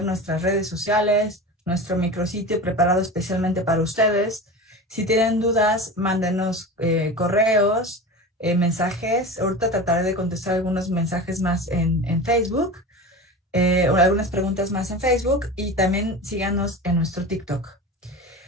nuestras redes sociales, nuestro micrositio preparado especialmente para ustedes. Si tienen dudas, mándenos correos, mensajes. Ahorita trataré de contestar algunos mensajes más en Facebook, o algunas preguntas más en Facebook, y también síganos en nuestro TikTok.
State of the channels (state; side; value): normal; both; correlation 0.30